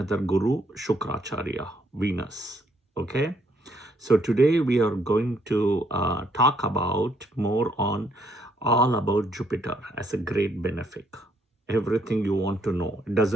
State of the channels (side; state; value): both; normal; correlation 0.70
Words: Guru, Shukracharya, Venus. Okay, so today we are going to talk about more on all about Jupiter as a great benefic. Everything you want to know, it